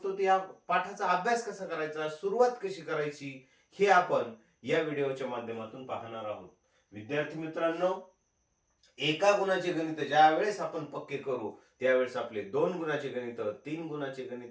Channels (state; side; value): identical; both; correlation 1.00